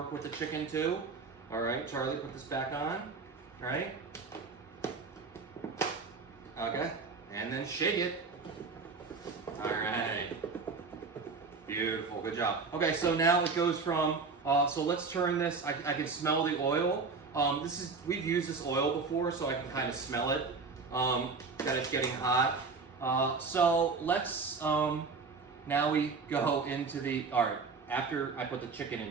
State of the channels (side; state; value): left; quieter; 4.6 dB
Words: with the chicken too. All right, Charlie, put this back on. All right. Okay, and then shake it. All right. Beautiful, good job. Okay, so now it goes from, so let's turn this, I can smell the oil. We've used this oil before, so I can kind of smell it, that it's getting hot. So let's, now we go into the, all right, after I put the chicken in,